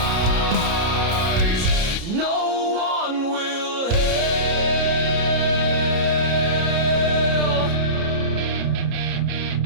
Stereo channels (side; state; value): left; late; 30 ms